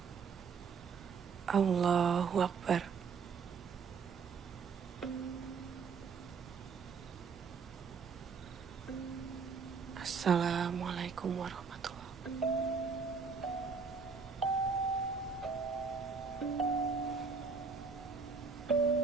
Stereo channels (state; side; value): quieter; left; 5.4 dB